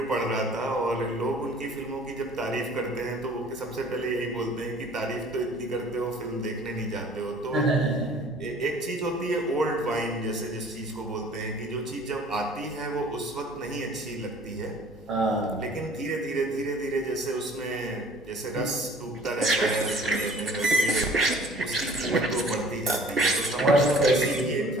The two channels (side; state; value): both; normal; correlation 0.51